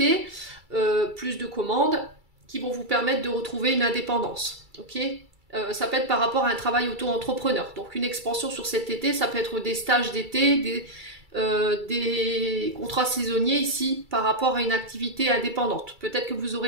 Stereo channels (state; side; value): late; left; 2.3 ms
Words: plus de commandes qui vont vous permettre de retrouver une indépendance, ok. Ça peut être par rapport à un travail auto-entrepreneur. Donc une expansion sur cet été, ça peut être des stages d'été, des contrats saisonniers ici par rapport à une activité indépendante. Peut-être que vous